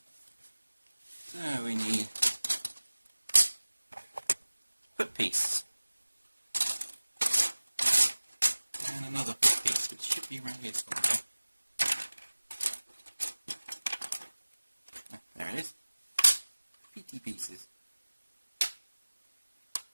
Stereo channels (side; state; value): both; inverted; correlation -1.00